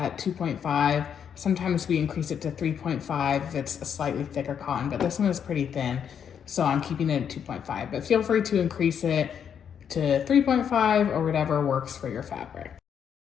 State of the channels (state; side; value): quieter; right; 8.0 dB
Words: 2.5. Sometimes we increase it to 3.5 if it's a slightly thicker cotton, but this one is pretty thin, so I'm keeping it at 2.5. But feel free to increase it to 3.5 or whatever works for your fabric.